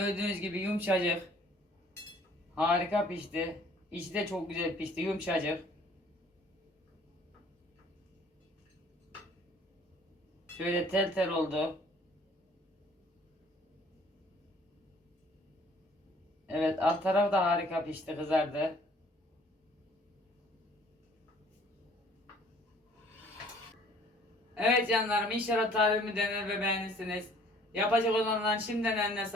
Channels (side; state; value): both; normal; correlation 0.56